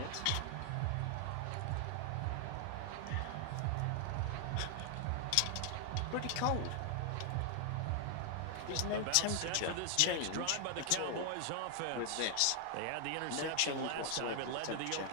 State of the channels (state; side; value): different; both; correlation 0.00